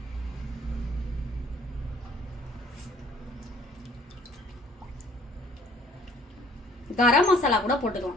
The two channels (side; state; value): both; normal; correlation 0.58